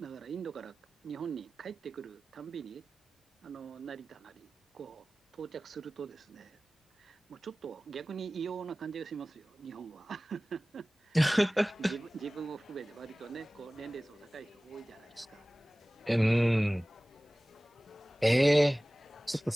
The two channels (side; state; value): both; normal; correlation 0.98